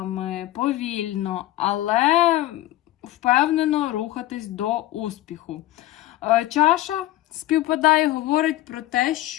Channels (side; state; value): right; quieter; 15.9 dB